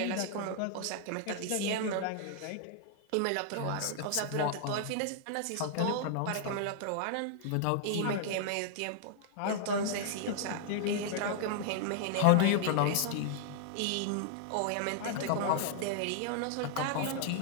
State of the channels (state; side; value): different; both; correlation -0.01